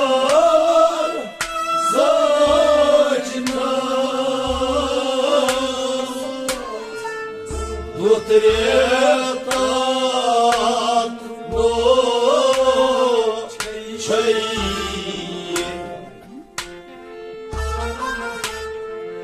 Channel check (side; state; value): both; identical; correlation 1.00